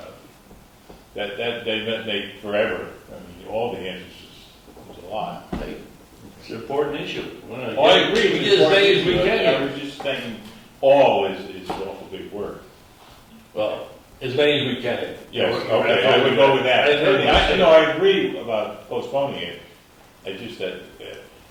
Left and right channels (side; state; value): both; identical; correlation 1.00